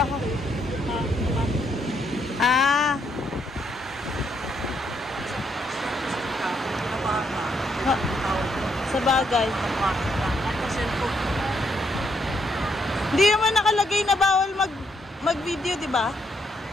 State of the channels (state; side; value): normal; both; correlation 0.75